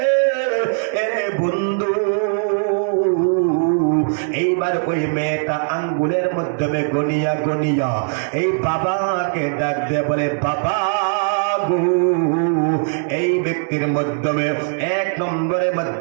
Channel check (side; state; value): left; silent; 62 dB below the other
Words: এরে বন্ধু, এইবার ওই মেয়েটা আঙ্গুলের মাধ্যমে গনিয়া গনিয়া এই বাবাকে ডাক দিয়ে বলে, বাবা এই ব্যক্তির মাধ্যমে এক নম্বরের